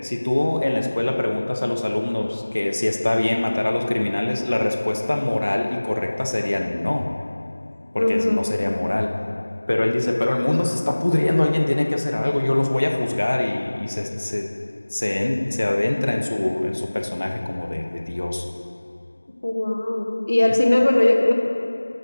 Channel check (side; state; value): both; inverted; correlation -1.00